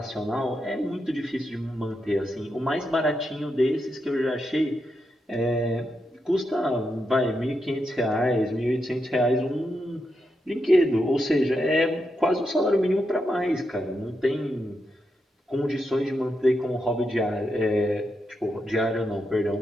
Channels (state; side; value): normal; both; correlation 0.84